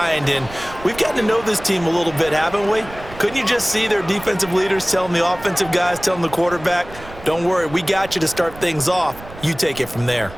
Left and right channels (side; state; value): right; noise; rumble, 17 dB below the sound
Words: and we've gotten to know this team a little bit, haven't we? Couldn't you just see their defensive leaders telling the offensive guys, telling the quarterback, don't worry, we got you to start things off. You take it from there.